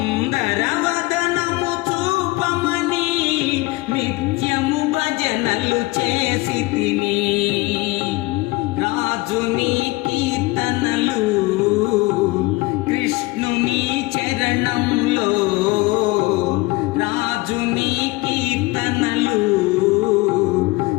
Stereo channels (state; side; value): quieter; right; 22.2 dB